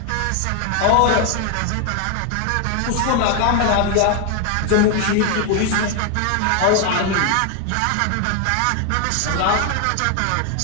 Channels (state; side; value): different; both; correlation 0.01